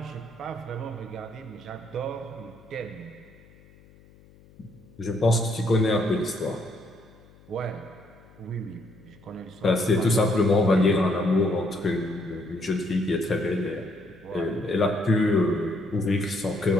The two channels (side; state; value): left; noise; hum, 26 dB below the sound